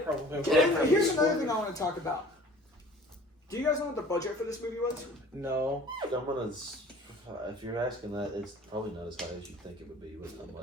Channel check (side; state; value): both; normal; correlation 0.48